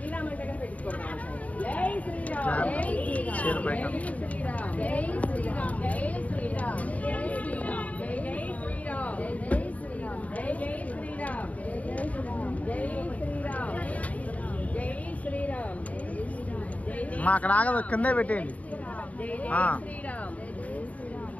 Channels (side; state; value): right; late; 0.070 ms